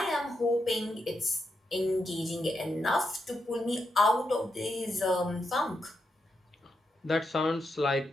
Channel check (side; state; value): both; normal; correlation 0.84